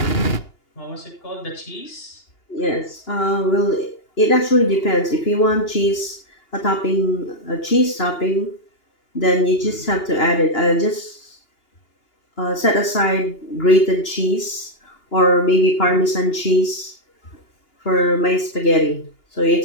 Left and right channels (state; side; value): late; right; 2.8 ms